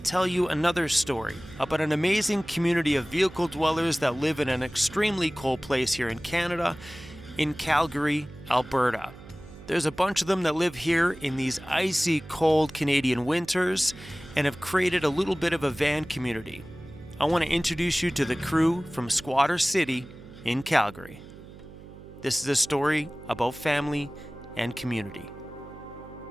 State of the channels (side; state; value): right; noise; hum, 17 dB below the sound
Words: you another story about an amazing community of vehicle dwellers that live in an extremely cold place here in Canada, in Calgary, Alberta. There's a bunch of them that live here in these icy cold Canadian winters and have created a little bit of a van community. I want to introduce you to the crew from Squatter City in Calgary. This is a story about family and community.